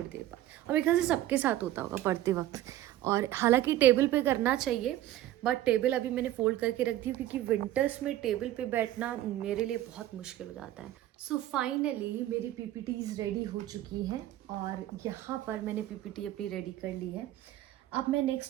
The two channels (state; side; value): quieter; left; 13.8 dB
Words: देर बाद। और मेरे ख्याल से सबके साथ होता होगा पढ़ते वक्त। और हालांकि टेबल पे करना चाहिए, बट टेबल अभी मैंने फोल्ड करके रख दी, क्योंकि विंटर्स में टेबल पे बैठना मेरे लिए बहुत मुश्किल हो जाता है। सो फाइनली मेरी पीपीटीज रेडी हो चुकी हैं, और यहाँ पर मैंने पीपीटी अपनी रेडी कर ली है। अब मैं